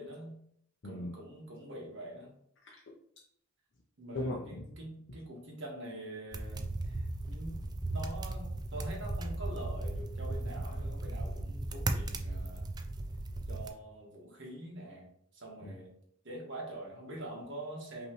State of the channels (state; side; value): normal; both; correlation 0.70